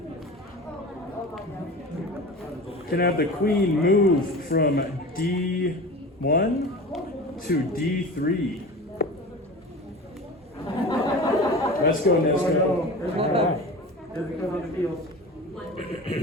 Can I have the queen move from D1 to D3? Let's go, Nesco.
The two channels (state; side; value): normal; both; correlation 0.34